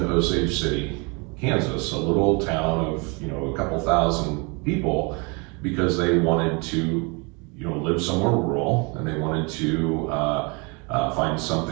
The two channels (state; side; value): quieter; left; 31.0 dB